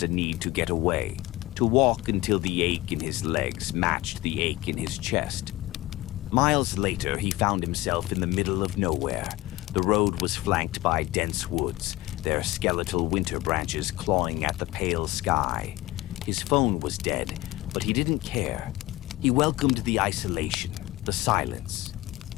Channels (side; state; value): right; quieter; 17.8 dB